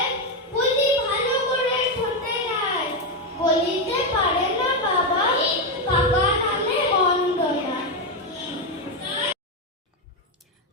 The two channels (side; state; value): both; normal; correlation 0.07